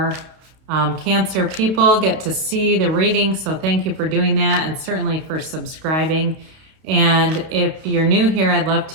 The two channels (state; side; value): late; left; 31 ms